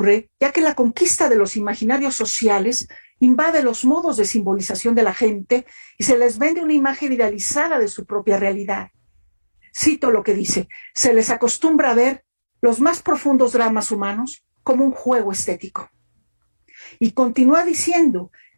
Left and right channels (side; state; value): both; inverted; correlation -1.00